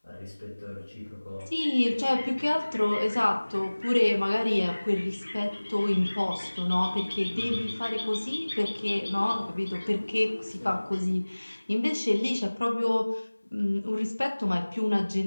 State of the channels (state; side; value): inverted; both; correlation -1.00